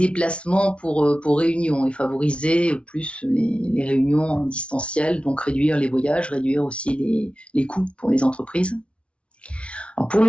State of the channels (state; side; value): late; right; 0.060 ms